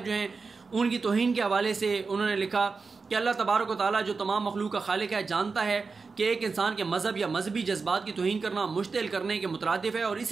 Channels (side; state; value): left; quieter; 4.5 dB